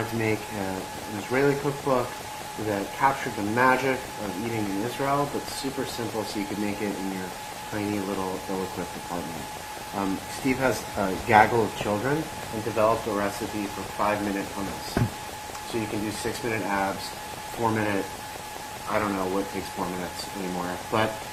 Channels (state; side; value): identical; both; correlation 1.00